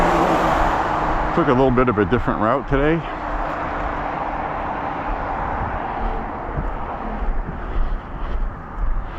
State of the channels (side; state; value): both; identical; correlation 1.00